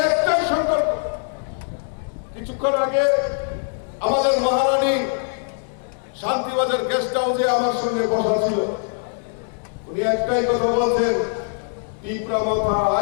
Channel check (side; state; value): right; silent; digital silence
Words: একটাই সংকল্প। কিছুক্ষণ আগে আমাদের মহারানী শান্তিবাজার গেস্ট হাউসে আমার সঙ্গে বসা ছিল, উনি একটাই কথা বলছেন, ত্রিপুরা মথা